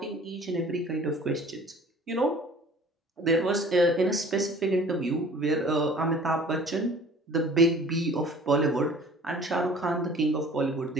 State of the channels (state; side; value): normal; both; correlation 0.48